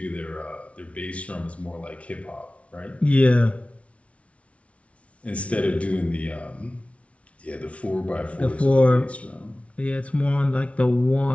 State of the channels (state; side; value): late; right; 0.063 ms